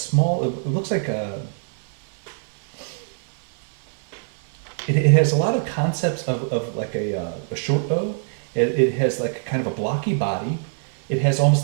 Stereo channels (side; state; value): left; silent; 63 dB below the other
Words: it looks like it has a lot of concepts of like a short bow. It has like kind of a blocky body. It has